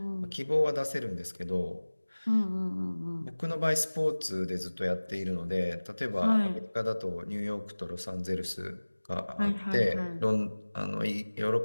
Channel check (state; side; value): inverted; both; correlation -1.00